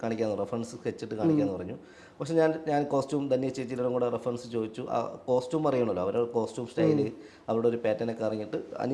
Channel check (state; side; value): identical; both; correlation 1.00